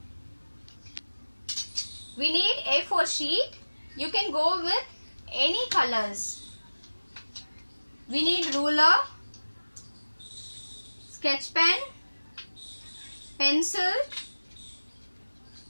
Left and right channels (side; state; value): both; inverted; correlation -1.00